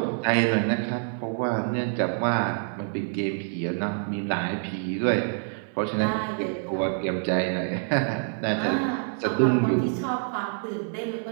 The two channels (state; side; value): silent; left; 60 dB below the other